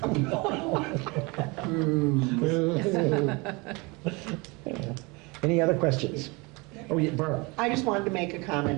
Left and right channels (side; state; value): left; quieter; 26.8 dB